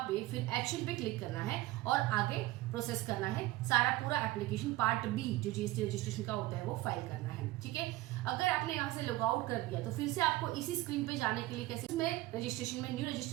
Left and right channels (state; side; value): quieter; left; 18.0 dB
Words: पे फिर एक्शन पे क्लिक करना है और आगे प्रोसेस करना है। सारा पूरा एप्लीकेशन पार्ट B जो GST रजिस्ट्रेशन का होता है वो फाइल करना है। ठीक है, अगर आपने यहाँ से लॉग आउट कर दिया तो फिर से आपको इसी स्क्रीन पे जाने के लिए कैसे इसमें रजिस्ट्रेशन में न्यू